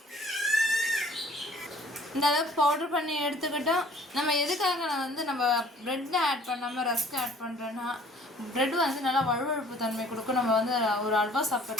இந்த அளவுக்கு பவுட்ரு பண்ணி எடுத்துக்கிட்டோம். நம்ம எதுக்காக வந்து நம்ம ப்ரெட்டை ஆட் பண்ணாமல் ரஸ்க்கு ஆட் பண்ணுறோன்னா, ப்ரெட்டு வந்து நல்லா வழுவழுப்பு தன்மை கொடுக்கும். நம்ம வந்து ஒரு அல்வா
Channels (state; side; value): normal; both; correlation 0.54